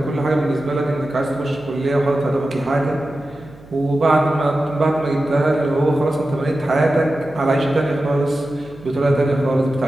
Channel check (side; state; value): right; noise; hum, 22 dB below the sound